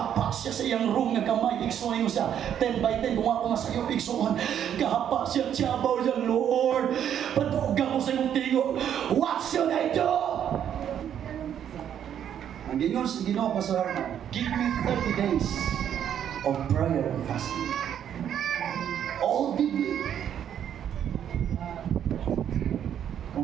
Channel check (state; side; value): quieter; left; 9.5 dB